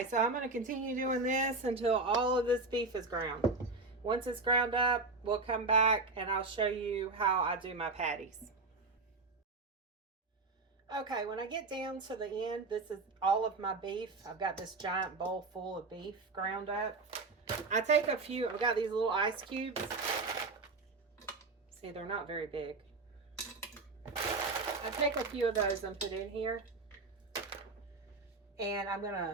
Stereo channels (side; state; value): left; quieter; 3.6 dB